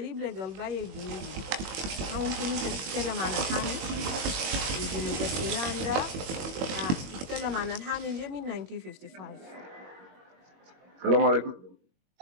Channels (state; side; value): late; left; 21 ms